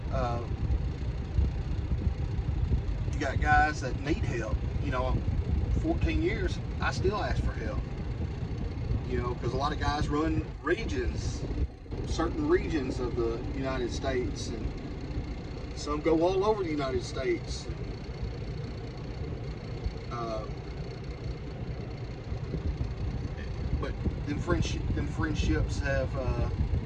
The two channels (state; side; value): identical; both; correlation 1.00